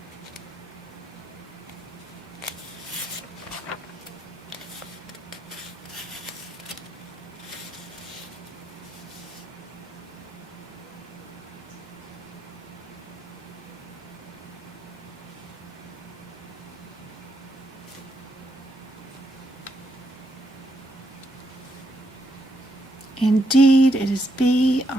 Indeed, it is B,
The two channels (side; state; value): both; normal; correlation 0.79